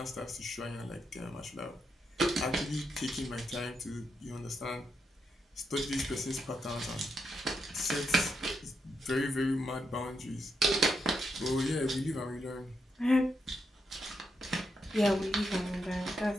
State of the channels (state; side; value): normal; both; correlation 0.82